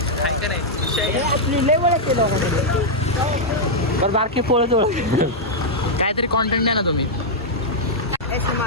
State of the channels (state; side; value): normal; both; correlation -0.05